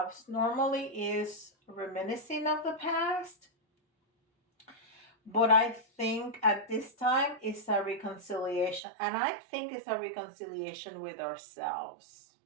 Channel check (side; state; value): left; drops out; at 8.8 s